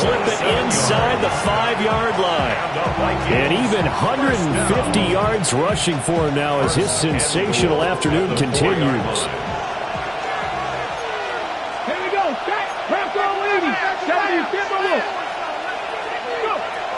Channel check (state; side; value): identical; both; correlation 1.00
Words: it inside the 5-yard line. And even 150 yards rushing for him now as his sensational afternoon continues. Here we go. Panther 80. 70.